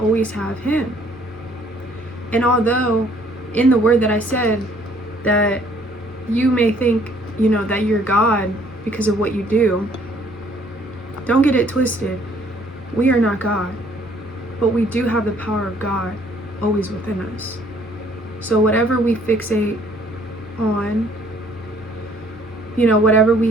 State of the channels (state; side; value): normal; both; correlation 0.61